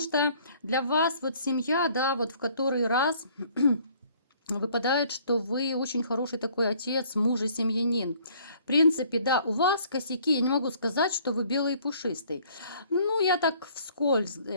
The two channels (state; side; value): inverted; both; correlation -0.58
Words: для вас вот семья, да, вот в который раз выпадает, что вы очень хороший такой отец, муж и семьянин. В принципе, да, у вас косяки, я не могу сказать, что вы белый и пушистый. Ну, я так вскользь